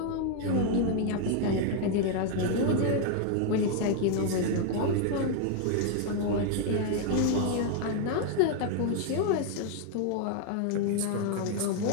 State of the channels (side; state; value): both; different; correlation 0.00